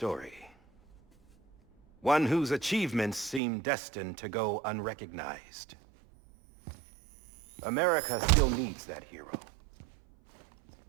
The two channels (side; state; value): left; drops out; at 3.4 s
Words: One whose achievements seem destined to go unrecognized. America still needs that hero.